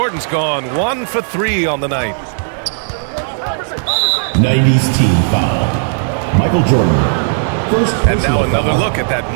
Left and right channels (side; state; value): left; silent; digital silence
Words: gone 1 for 3 on the night. 90's team foul. Michael Jordan. First And now another foul. look at that